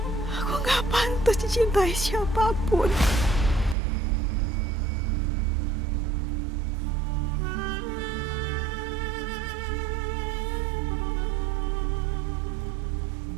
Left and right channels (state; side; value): drops out; left; at 3.8 s